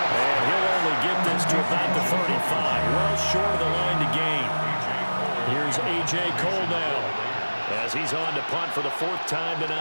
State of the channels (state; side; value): inverted; both; correlation -1.00